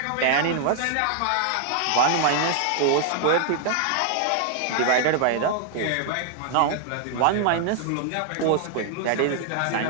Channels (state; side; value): different; both; correlation 0.00